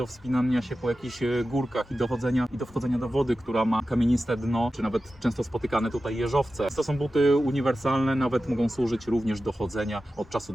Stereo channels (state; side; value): normal; both; correlation 0.93